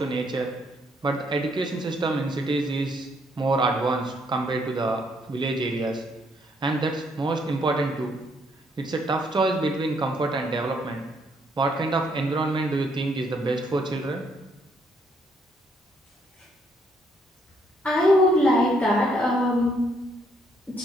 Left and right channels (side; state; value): both; normal; correlation 0.70